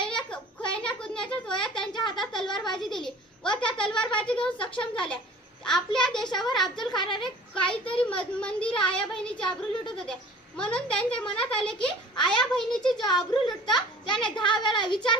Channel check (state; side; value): normal; both; correlation 0.46